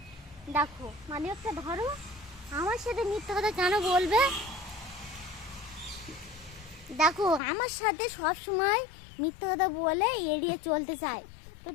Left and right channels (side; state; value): right; drops out; at 7.4 s